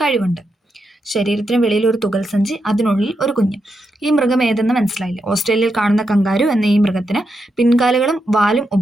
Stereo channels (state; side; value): normal; both; correlation 0.84